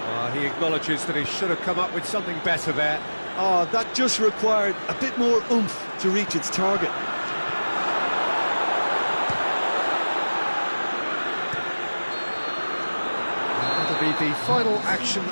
He acknowledges that he should have come up with something better there. Oh, that just required a bit more oomph to reach its target. That'll be the final action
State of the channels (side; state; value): both; inverted; correlation -1.00